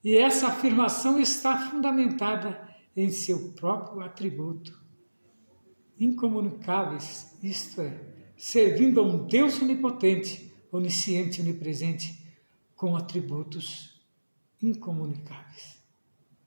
e essa afirmação está fundamentada em seu próprio atributo. Incomunicáveis, isto é, servindo a um Deus onipotente, onisciente, onipresente, com atributos incomunicáveis.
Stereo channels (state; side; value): inverted; both; correlation -1.00